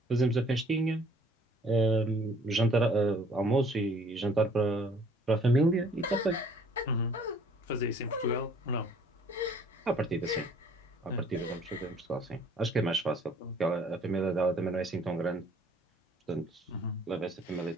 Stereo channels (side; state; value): both; normal; correlation 0.57